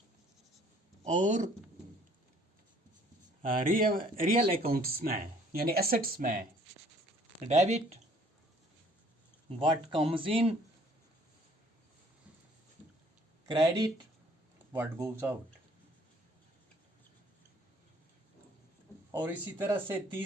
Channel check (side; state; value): both; normal; correlation 0.58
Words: और रियल अकाउंट्स में यानी एसेट्स में debit what comes in, credit what goes out. और इसी तरह से